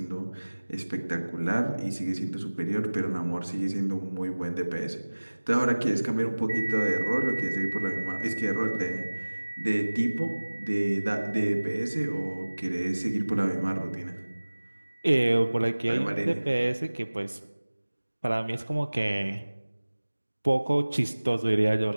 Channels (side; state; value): both; inverted; correlation -1.00